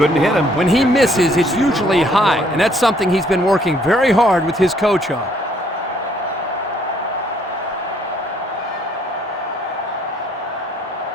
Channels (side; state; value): both; normal; correlation 0.65